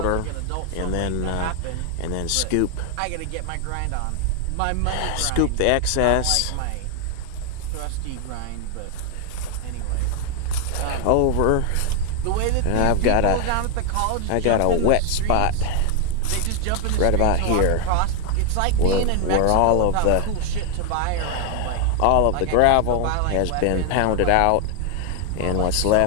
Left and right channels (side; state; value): both; different; correlation 0.00